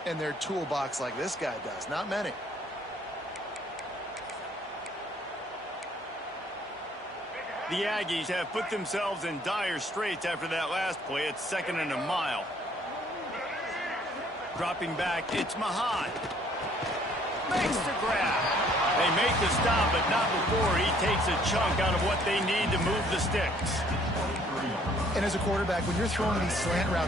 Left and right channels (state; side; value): normal; both; correlation 0.61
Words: in their toolbox like this guy does? Not many. The Aggies have put themselves in dire straits after that last play. It's 2nd and a mile. Dropping back, it's Mahan. Makes the grab. They make the stop, but not before he takes a chunk out of what they need to move the sticks. And as a quarterback, when you're throwing these slant